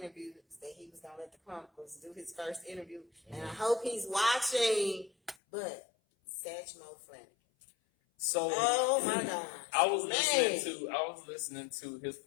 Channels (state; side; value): drops out; right; at 5.4 s